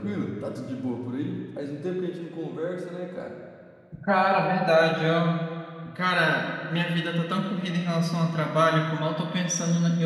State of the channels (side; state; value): both; identical; correlation 1.00